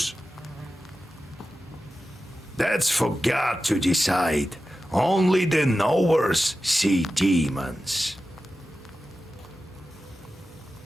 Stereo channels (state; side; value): normal; both; correlation 0.93